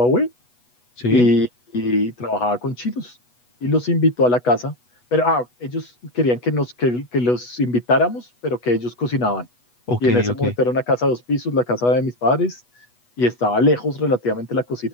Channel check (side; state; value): right; late; 8.2 ms